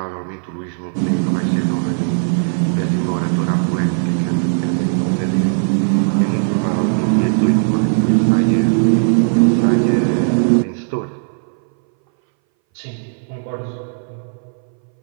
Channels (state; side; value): silent; left; 62 dB below the other